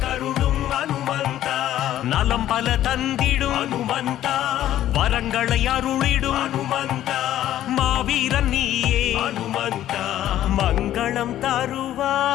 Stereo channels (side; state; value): right; quieter; 12.6 dB